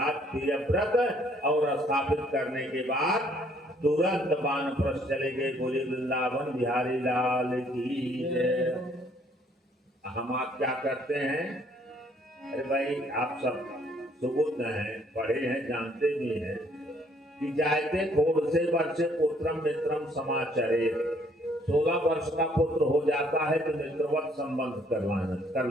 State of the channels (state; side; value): normal; both; correlation 0.64